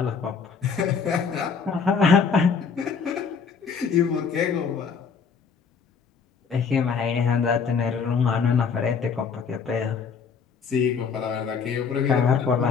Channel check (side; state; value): right; quieter; 5.8 dB